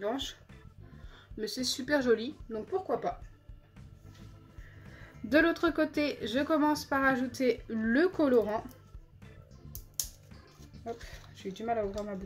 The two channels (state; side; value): identical; both; correlation 1.00